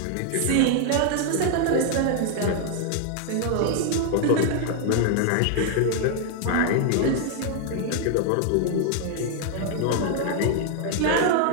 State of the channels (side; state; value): both; different; correlation 0.00